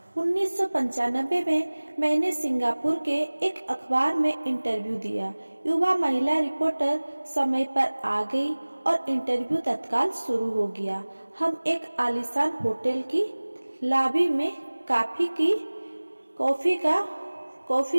1995 में मैंने सिंगापुर के एक अखबार में इंटरव्यू दिया। युवा महिला रिपोर्टर समय पर आ गई और इंटरव्यू तत्काल शुरू हो गया। हम एक आलीशान होटल की लॉबी में कॉफी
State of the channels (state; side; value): inverted; both; correlation -1.00